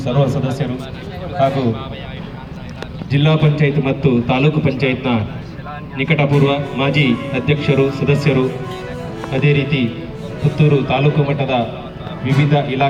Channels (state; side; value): identical; both; correlation 1.00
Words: ಸರ್ವ ಸದಸ್ಯರು ಹಾಗೂ ಜಿಲ್ಲಾ ಪಂಚಾಯತ್ ಮತ್ತು ತಾಲೂಕು ಪಂಚಾಯತ್ನ ನಿಕಟಪೂರ್ವ ಮಾಜಿ ಅಧ್ಯಕ್ಷರು, ಸದಸ್ಯರು, ಅದೇ ರೀತಿ ಪುತ್ತೂರು ತಾಲೂಕು ಮಟ್ಟದ ವಿವಿಧ